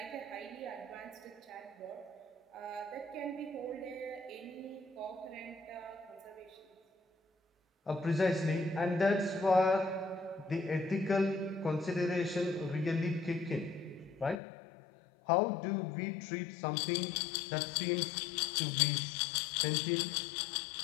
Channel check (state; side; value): drops out; right; at 14.4 s